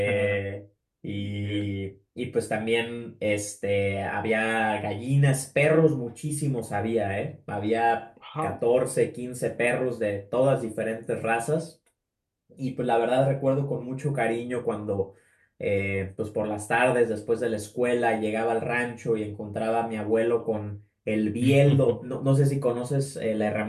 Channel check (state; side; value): identical; both; correlation 1.00